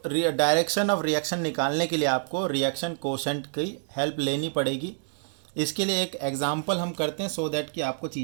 डायरेक्शन ऑफ रिएक्शन निकालने के लिए आपको रिएक्शन कोशेंट की हेल्प लेनी पड़ेगी। इसके लिए एक एग्जाम्पल हम करते हैं सो दैट कि आपको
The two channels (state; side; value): silent; left; digital silence